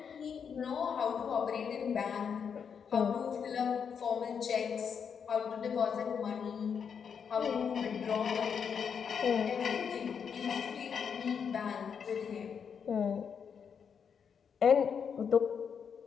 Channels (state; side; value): quieter; right; 6.9 dB